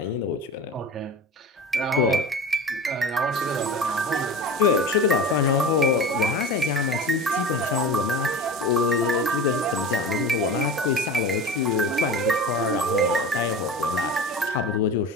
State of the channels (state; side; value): normal; both; correlation 0.32